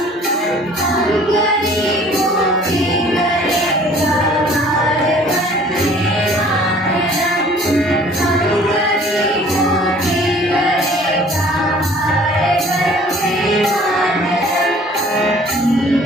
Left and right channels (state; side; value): normal; both; correlation 0.52